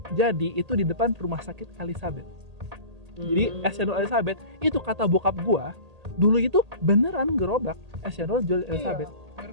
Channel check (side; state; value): left; late; 1.8 ms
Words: Jadi itu di depan rumah sakit Elizabeth. Jadi es cendol Elizabeth itu kata bokap gua dulu itu beneran gerobak es cendol jual Elizabeth. Biar